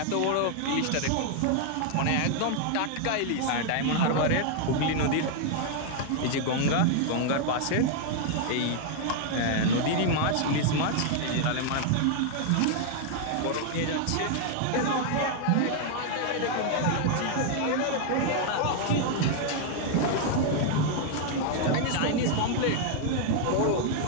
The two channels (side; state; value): both; different; correlation 0.00